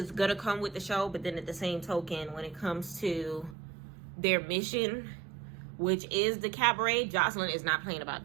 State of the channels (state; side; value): drops out; left; at 3.6 s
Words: going to come with the show, but then at the same token, when it comes to their mission, which is the Cabaret, Joseline is not playing about